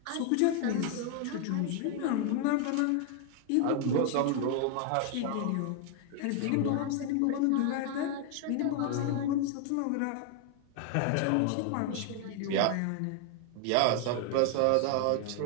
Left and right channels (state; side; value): different; both; correlation 0.00